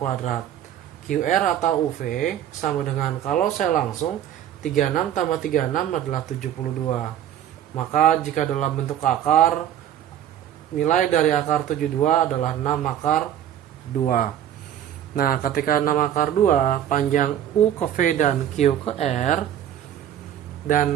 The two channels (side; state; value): left; quieter; 10.8 dB